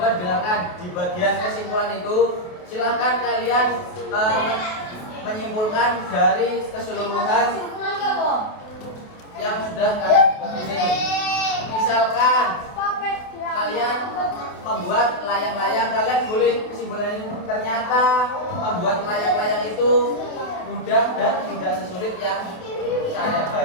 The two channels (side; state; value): right; late; 28 ms